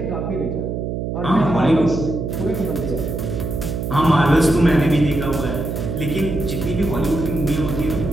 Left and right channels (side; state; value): right; noise; hum, 3 dB below the sound